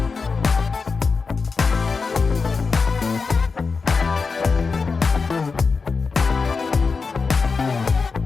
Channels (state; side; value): quieter; right; 4.7 dB